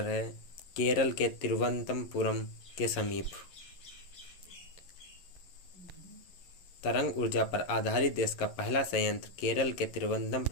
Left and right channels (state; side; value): late; right; 11 ms